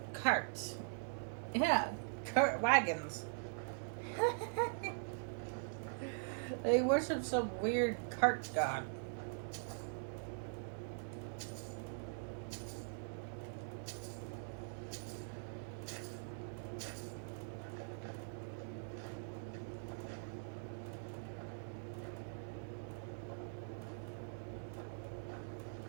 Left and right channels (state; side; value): silent; left; digital silence